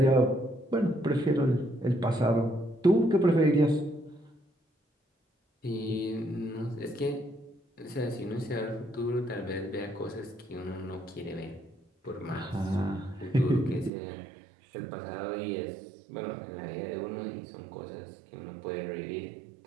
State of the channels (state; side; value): drops out; left; at 13.9 s